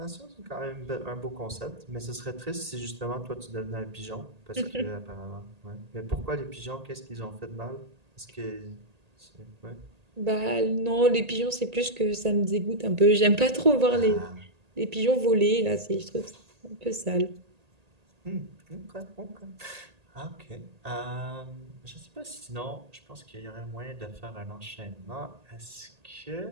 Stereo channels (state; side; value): late; left; 1.8 ms